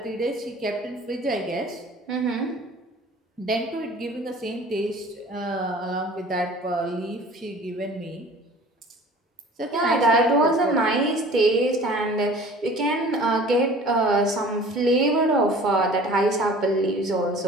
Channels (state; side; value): normal; both; correlation 0.46